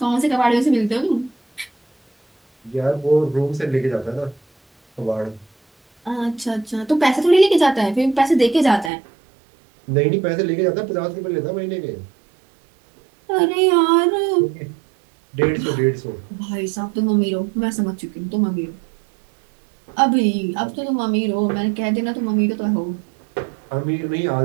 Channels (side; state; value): left; drops out; at 8.9 s